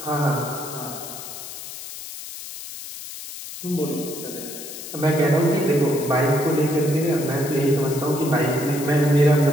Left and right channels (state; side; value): noise; left; hiss, 11 dB below the sound